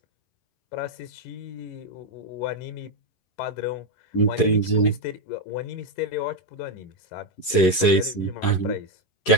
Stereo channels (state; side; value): late; right; 11 ms